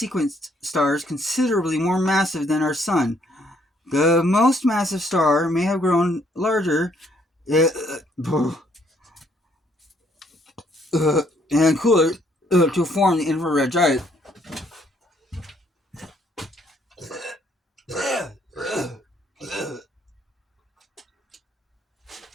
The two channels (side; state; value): both; normal; correlation 0.68